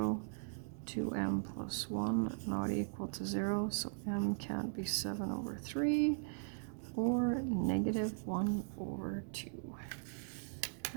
2m plus 1 not equal to 0. So m can't be 7 over 3 or negative 1 over 2.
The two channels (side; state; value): left; silent; digital silence